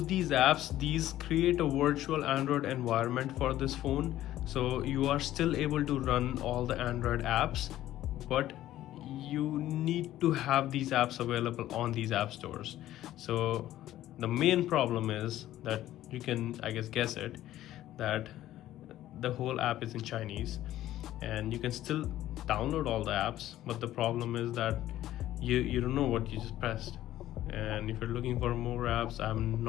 these apps, these create a virtual Android environment for this phone. So you are still able to run all the Android apps, but you need to have these apps available on these app stores. So the main problem is that you can, I guess it, that the whole app is in Chinese, and you can still download all the apps, but the problem is that you don't know what you just pressed. And if you're looking for more apps, I'm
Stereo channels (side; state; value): right; quieter; 13.8 dB